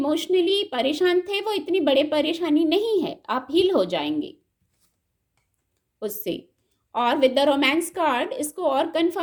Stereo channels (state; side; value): identical; both; correlation 1.00